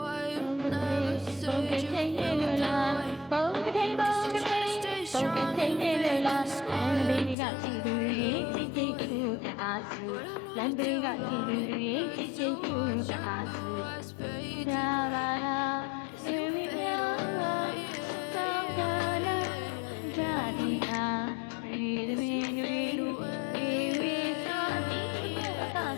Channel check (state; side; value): drops out; right; at 7.4 s